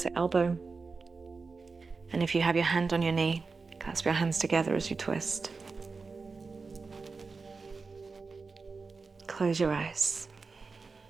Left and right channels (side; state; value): left; quieter; 4.4 dB